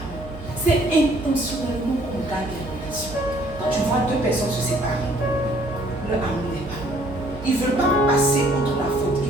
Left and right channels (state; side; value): noise; right; hum, 14 dB below the sound